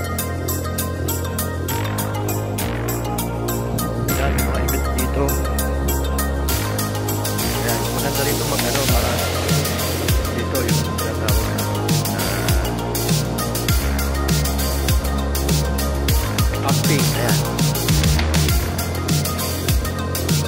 Ayan, mga event dito. Ayan, maganda rito mag-ano para dito yung tinatawag na camping. Ayan.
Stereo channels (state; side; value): identical; both; correlation 1.00